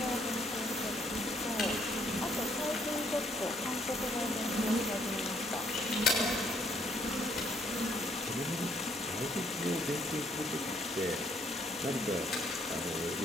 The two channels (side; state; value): both; normal; correlation 0.68